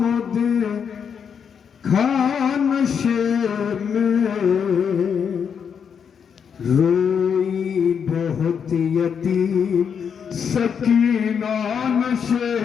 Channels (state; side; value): quieter; right; 7.1 dB